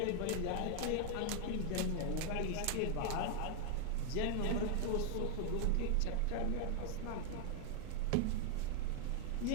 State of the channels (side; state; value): both; different; correlation 0.00